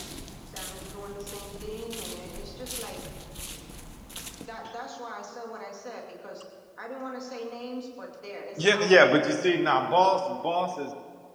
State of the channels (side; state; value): both; identical; correlation 1.00